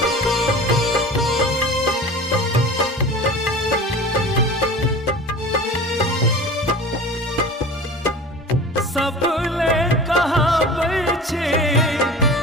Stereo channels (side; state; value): both; normal; correlation 0.38